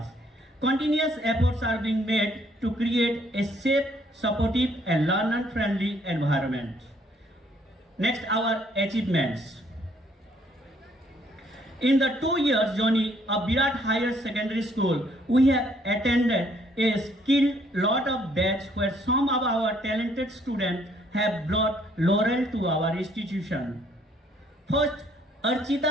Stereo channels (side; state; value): both; normal; correlation 0.65